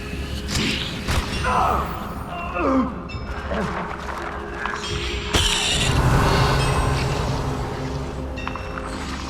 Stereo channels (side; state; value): both; identical; correlation 1.00